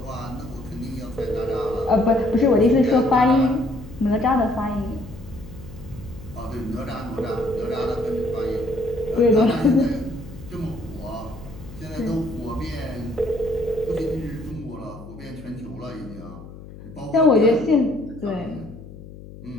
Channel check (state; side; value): noise; left; hum, 16 dB below the sound